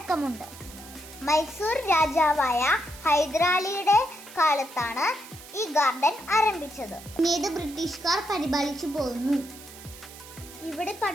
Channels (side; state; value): right; noise; hiss, 17 dB below the sound